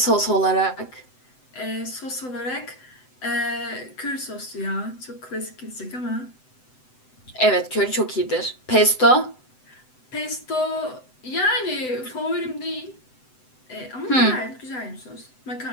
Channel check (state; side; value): late; right; 7.9 ms